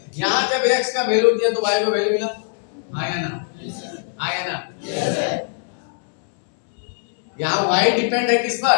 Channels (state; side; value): silent; right; digital silence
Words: यहाँ जब x का वैल्यू दिया तो y को वैल्यू मिला, हाँ है ना, हाँ है ना। यहाँ y डिपेंड है किस पर,